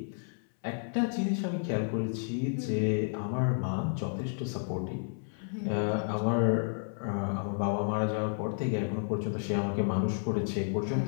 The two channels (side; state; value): right; silent; 57 dB below the other